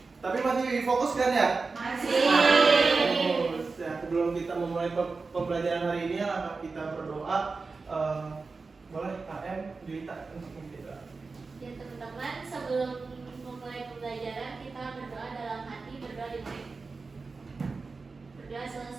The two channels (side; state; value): left; quieter; 4.2 dB